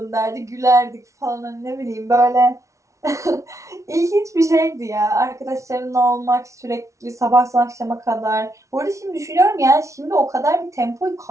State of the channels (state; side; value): late; left; 0.14 ms